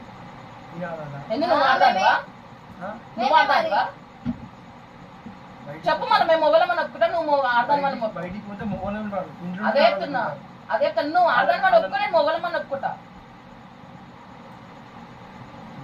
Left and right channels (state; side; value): identical; both; correlation 1.00